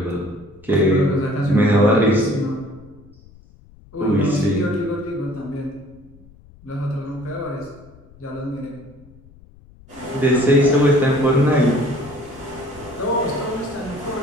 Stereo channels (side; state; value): left; noise; rumble, 25 dB below the sound